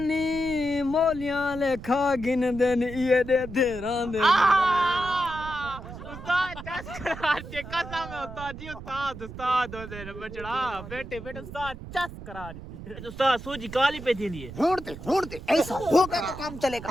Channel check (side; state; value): right; noise; rumble, 12 dB below the sound